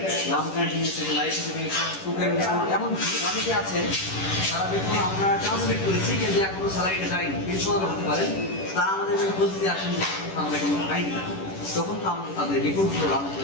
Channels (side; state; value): right; late; 10 ms